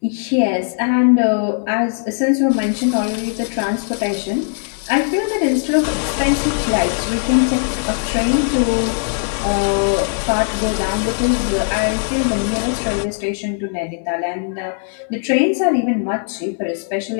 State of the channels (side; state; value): right; silent; digital silence